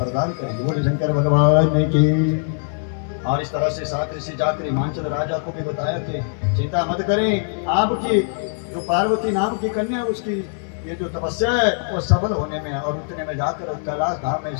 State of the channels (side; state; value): right; silent; 63 dB below the other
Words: करेंगे। बोले शंकर भगवान की। और इस तरह से 7 ऋषि जाकर हिमाचल राजा को भी बताया कि चिंता मत करें, आपकी जो पार्वती नाम की कन्या उसकी ये जो तपस्या है वो सफल होने में। और उतने में जाकर कैलाश धाम में